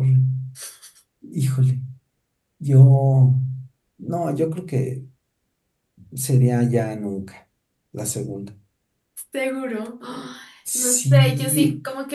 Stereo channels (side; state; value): both; identical; correlation 1.00